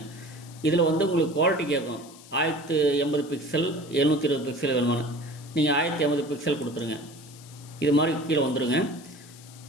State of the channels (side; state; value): left; noise; hiss, 21 dB below the sound